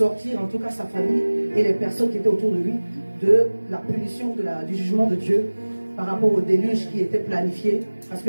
en tout cas sa famille et les personnes qui étaient autour de lui de la punition, du jugement de Dieu par rapport au déluge qui était planifié parce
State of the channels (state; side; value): inverted; both; correlation -1.00